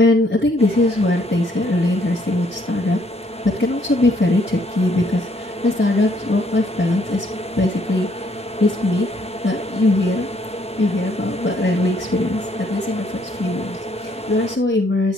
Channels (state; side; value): normal; both; correlation 0.67